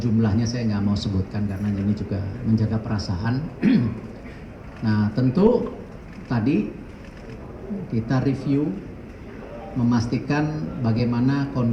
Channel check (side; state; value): both; identical; correlation 1.00